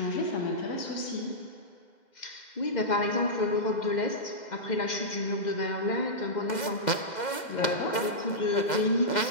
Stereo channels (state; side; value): late; right; 2.0 ms